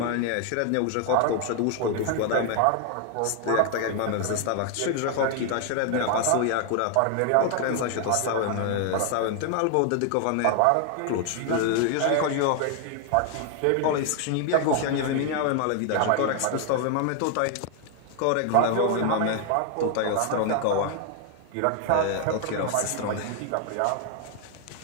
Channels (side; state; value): both; different; correlation 0.00